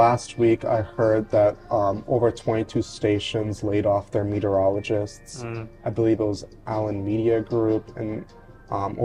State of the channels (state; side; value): identical; both; correlation 1.00